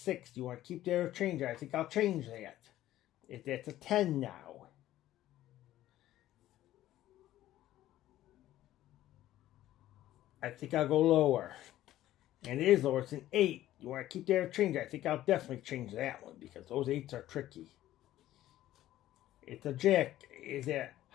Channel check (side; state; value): right; quieter; 14.0 dB